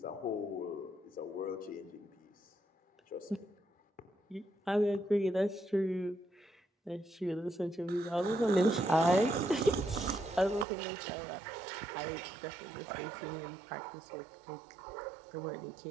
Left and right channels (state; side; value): drops out; left; at 10.7 s